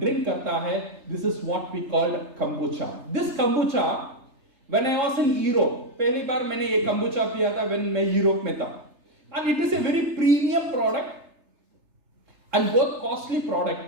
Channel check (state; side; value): late; left; 3.3 ms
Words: करता है। This is what we called kombucha. This kombucha when I was in Europe, पहली बार मैंने ये कंबूचा पिया था व्हेन मैं यूरोप में था, and it is a very premium product and बहुत कॉस्टली